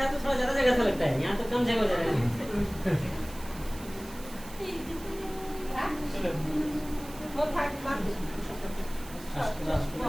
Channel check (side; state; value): right; noise; hiss, 17 dB below the sound